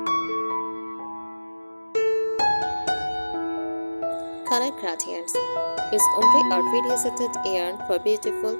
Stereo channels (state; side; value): inverted; both; correlation -1.00